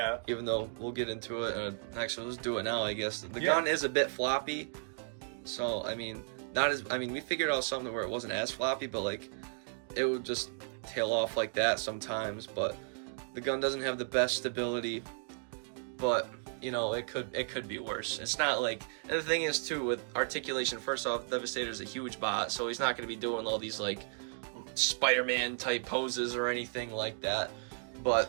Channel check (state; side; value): silent; left; digital silence